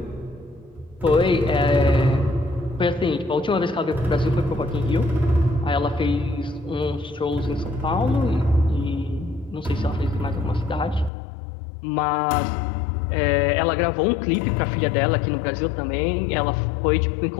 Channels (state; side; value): drops out; right; at 11.1 s